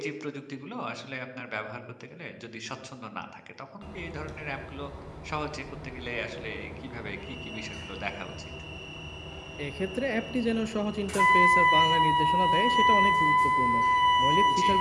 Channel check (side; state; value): both; identical; correlation 1.00